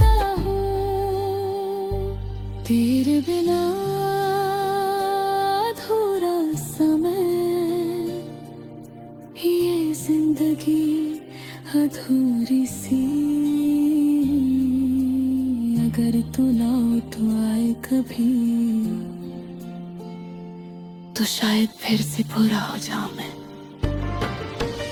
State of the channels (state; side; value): identical; both; correlation 1.00